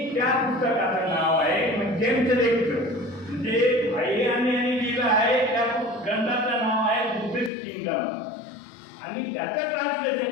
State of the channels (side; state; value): right; drops out; at 7.5 s